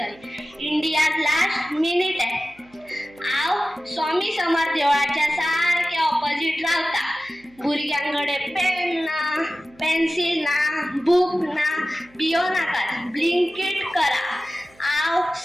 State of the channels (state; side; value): noise; right; hum, 29 dB below the sound